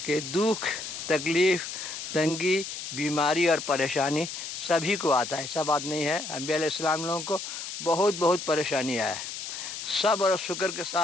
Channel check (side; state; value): left; noise; hiss, 7 dB below the sound